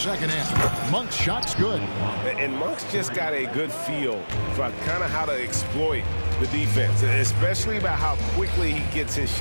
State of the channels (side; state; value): both; inverted; correlation -1.00